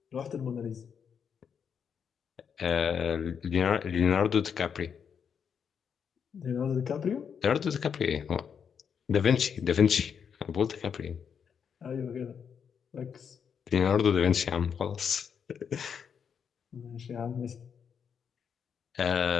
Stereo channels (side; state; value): right; quieter; 7.1 dB